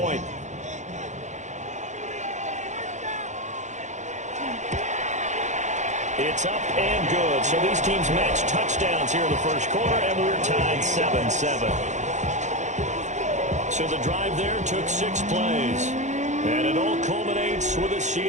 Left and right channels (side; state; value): left; late; 0.34 ms